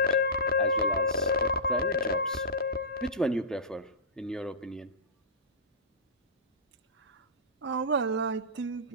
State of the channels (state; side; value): normal; both; correlation -0.19